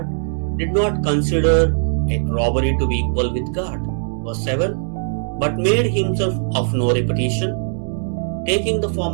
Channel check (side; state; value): left; silent; digital silence